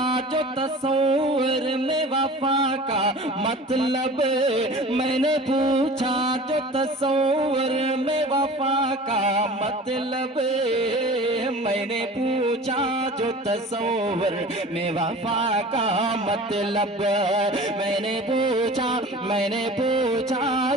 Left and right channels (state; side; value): normal; both; correlation 0.40